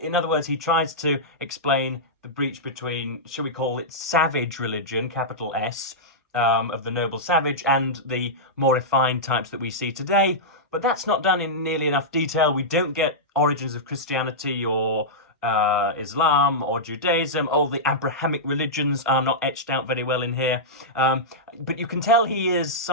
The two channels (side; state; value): both; normal; correlation -0.11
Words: In other words, he tries to explain the breach between, shall we call it, savage religion, capital S, of the noble savage, and the more refined types that we see today. But that's not done in nearly enough detail. We don't get origins of Christianity or Islam or Judaism. All the Abrahamic religions are not etched out very well in here. But you can tell he is